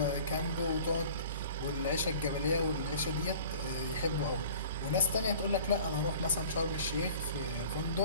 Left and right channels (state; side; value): inverted; both; correlation -0.45